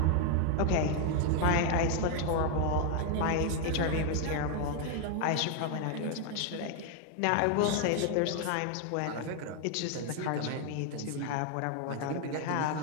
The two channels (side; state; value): both; different; correlation 0.01